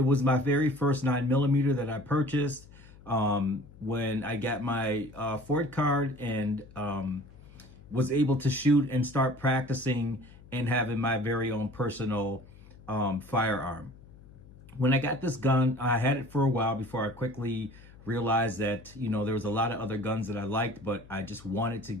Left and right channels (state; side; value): noise; left; hum, 21 dB below the sound